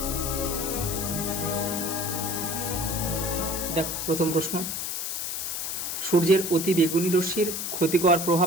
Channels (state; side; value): noise; left; hiss, 3 dB below the sound